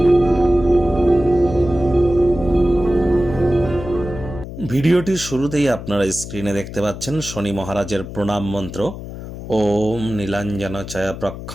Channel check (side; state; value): left; noise; hum, 10 dB below the sound